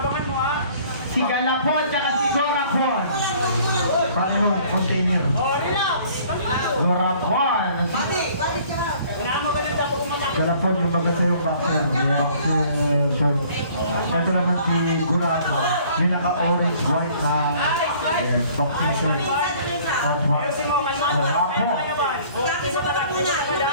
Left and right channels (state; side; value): inverted; both; correlation -0.55